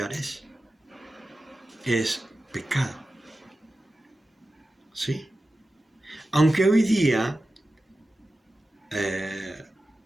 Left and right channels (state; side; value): normal; both; correlation 0.93